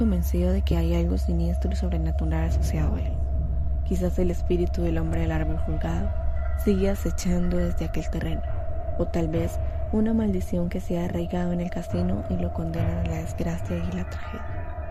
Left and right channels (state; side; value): identical; both; correlation 1.00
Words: de que hay algo siniestro y sobrenatural asociado a él. Quizás el espíritu del hombre del árbol colgado sigue acechando desde aquel terreno, o tal vez una maldición que se ha arraigado en el casino y lo condena a la desgracia y la tragedia.